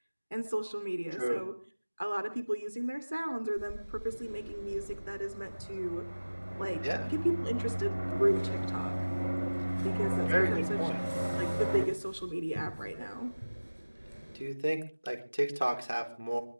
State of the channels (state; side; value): inverted; both; correlation -1.00